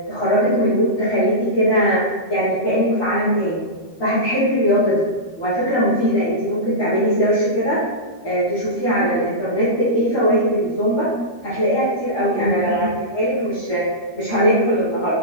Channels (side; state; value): right; late; 13 ms